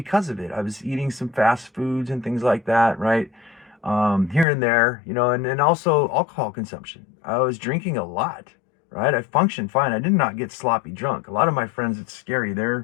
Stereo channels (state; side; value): drops out; right; at 4.5 s